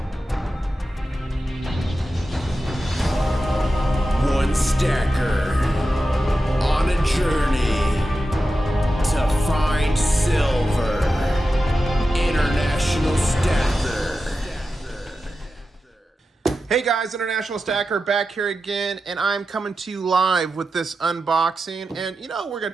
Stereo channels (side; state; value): both; normal; correlation 0.91